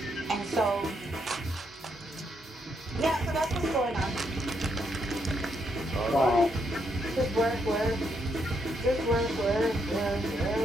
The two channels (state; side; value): normal; both; correlation 0.77